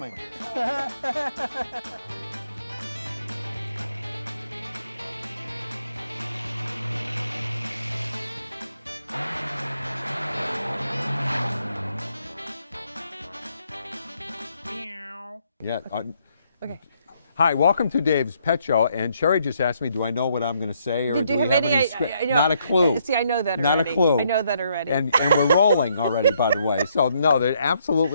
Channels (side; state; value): both; inverted; correlation -0.72